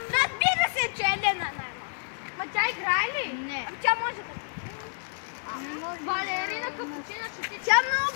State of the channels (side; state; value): right; silent; digital silence